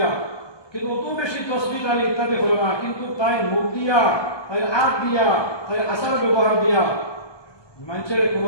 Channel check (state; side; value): late; right; 1.2 ms